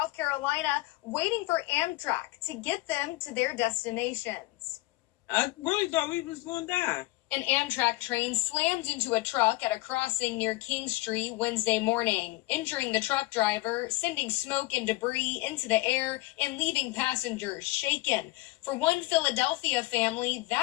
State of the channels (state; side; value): quieter; right; 20.5 dB